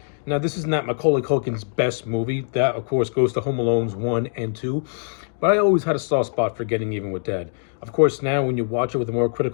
Now, this is not Macaulay Culkin's best movie. That, of course, goes to Home Alone's 1 and 2. But I always had a soft spot for Getting Even with Dad. Of course, now when you watch it with a more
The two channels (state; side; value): silent; right; digital silence